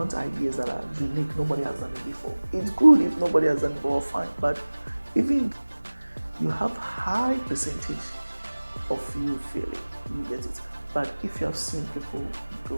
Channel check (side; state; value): both; inverted; correlation -1.00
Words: ideas that are unique. Nobody has done it before. It's good if nobody has done it before, fine. But even you have high percentage of you failing, you get it. But if you have seen people